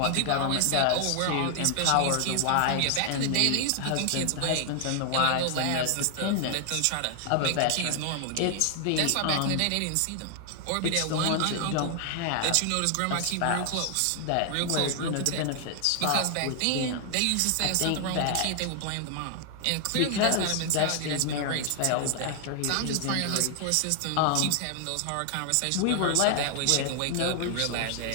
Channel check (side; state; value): both; different; correlation 0.00